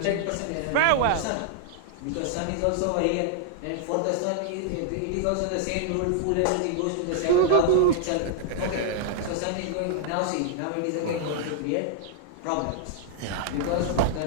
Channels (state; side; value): different; both; correlation -0.01